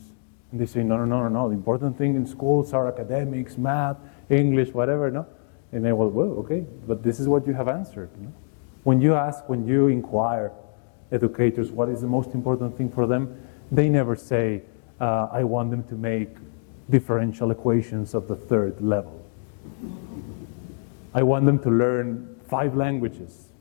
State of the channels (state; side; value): silent; right; digital silence